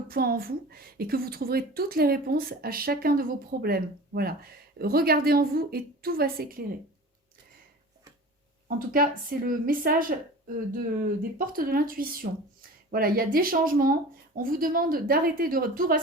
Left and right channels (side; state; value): both; normal; correlation 0.37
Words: point en vous et que vous trouverez toutes les réponses à chacun de vos problèmes. Voilà. Regardez en vous et tout va s'éclairer. En tout cas, c'est le message des portes de l'intuition. Voilà, il y a des changements. On vous demande d'arrêter de tout